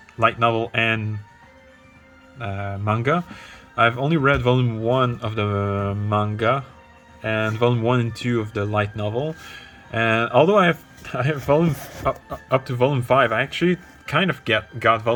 light novel and manga. I've only read volume 1 of the manga and volume 1 and 2 of the light novel. And although I have volume up to volume 5, I actually kind of got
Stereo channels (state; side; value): identical; both; correlation 1.00